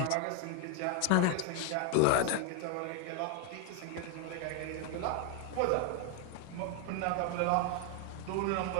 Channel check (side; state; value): both; different; correlation 0.01